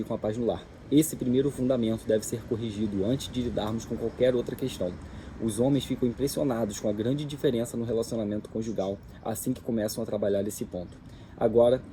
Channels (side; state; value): both; identical; correlation 1.00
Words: a paz no lar. Esse primeiro fundamento deve ser corrigido antes de lidarmos com qualquer outra questão. Os homens ficam impressionados com a grande diferença no relacionamento conjugal assim que começam a trabalhar esse ponto. Agora,